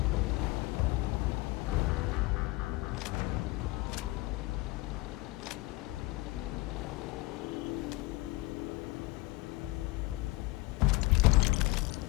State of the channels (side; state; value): right; quieter; 21.4 dB